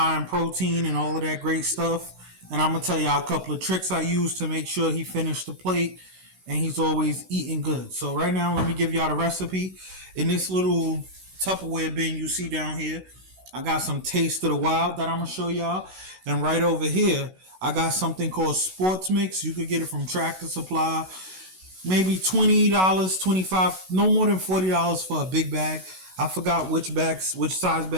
in protein and all of that great stuff. And I'm going to tell y'all a couple of tricks I use to make sure he finished the plate and he's always eating good. So right now, let me give y'all the recipe. In this little Tupperware bin you see down here, I got some Taste of the Wild that I'm going to show y'all. And right over here, I got something called Sports Mix. You could get it from Tractor Supply. Maybe $20, $25, no more than $40 for a big bag. I forgot which size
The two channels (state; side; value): late; left; 16 ms